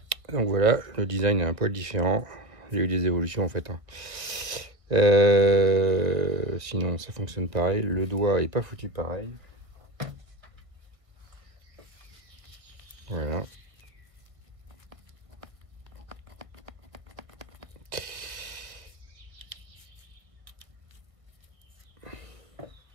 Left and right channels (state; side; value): late; left; 1.5 ms